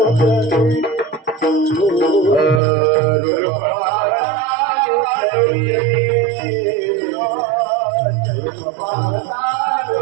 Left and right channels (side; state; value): left; drops out; at 2.6 s